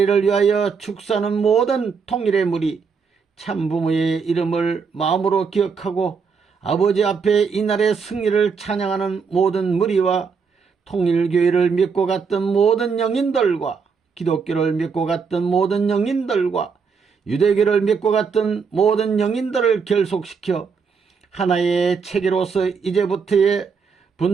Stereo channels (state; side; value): quieter; left; 5.6 dB